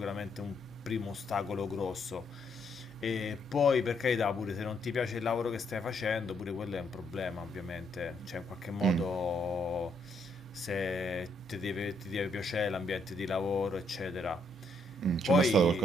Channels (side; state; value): both; normal; correlation 0.73